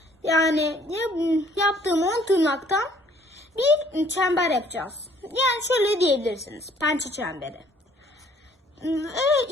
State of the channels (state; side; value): normal; both; correlation 0.59